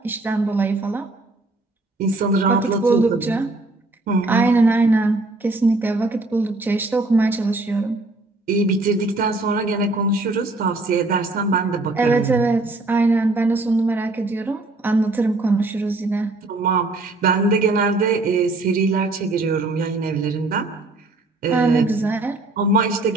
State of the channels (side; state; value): left; quieter; 3.0 dB